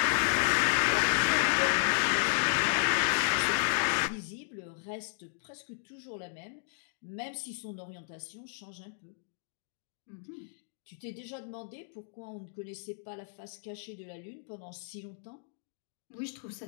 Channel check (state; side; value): silent; right; digital silence